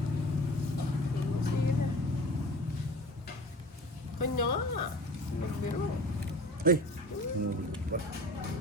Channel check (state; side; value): normal; both; correlation 0.40